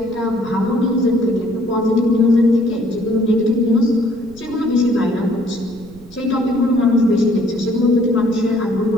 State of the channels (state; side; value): noise; right; rumble, 21 dB below the sound